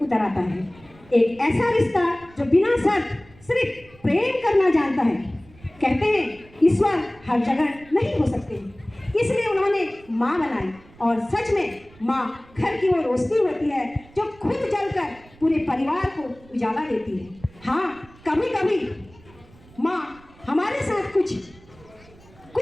उतर आता है। एक ऐसा रिश्ता जो बिना शर्त सिर्फ प्रेम करना जानता है। कहते हैं ईश्वर हर जगह नहीं हो सकते, इसलिए उन्होंने माँ बनाई। और सच में माँ घर की वो रोशनी होती है जो खुद जलकर पूरे परिवार को उजाला देती है। हाँ, कभी कभी माँ हमारे साथ कुछ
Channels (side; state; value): right; noise; rumble, 25 dB below the sound